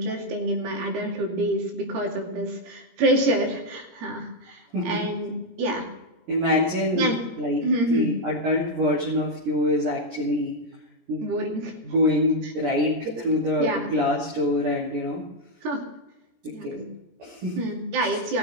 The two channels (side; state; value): left; late; 17 ms